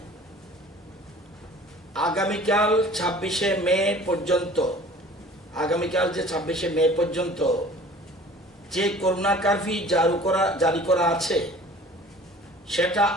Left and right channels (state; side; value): normal; both; correlation 0.46